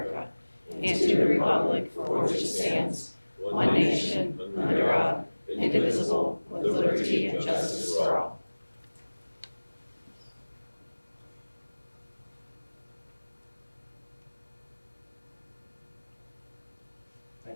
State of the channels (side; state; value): both; inverted; correlation -1.00